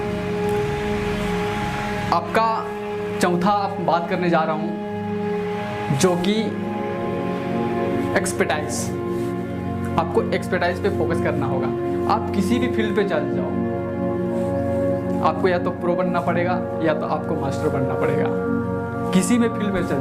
आपका चौथा आप बात करने जा रहा हूँ, जो कि एक्सपर्टाइज। आपको एक्सपर्टाइज पे फोकस करना होगा। आप किसी भी फील्ड पे चल जाओ, आपको या तो प्रो बनना पड़ेगा या तो आपको मास्टर बनना पड़ेगा। किसी भी फील्ड में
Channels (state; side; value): identical; both; correlation 1.00